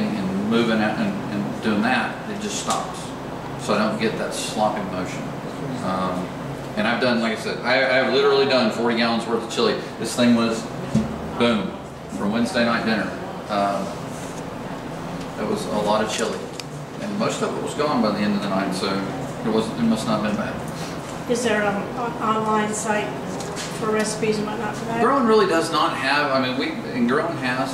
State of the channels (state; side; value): identical; both; correlation 1.00